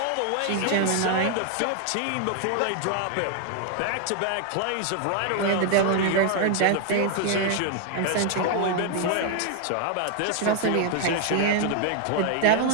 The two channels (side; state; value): both; different; correlation 0.00